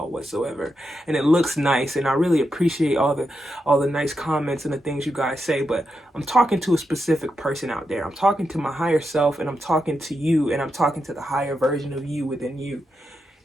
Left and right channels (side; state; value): both; normal; correlation 0.86